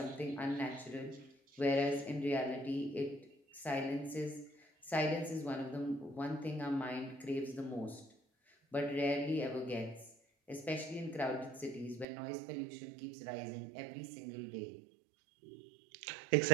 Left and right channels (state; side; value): drops out; left; at 12.1 s